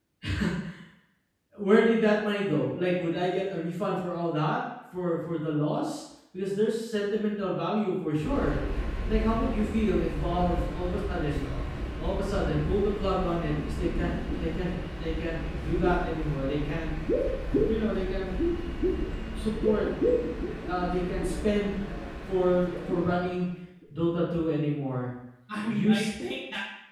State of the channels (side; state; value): both; identical; correlation 1.00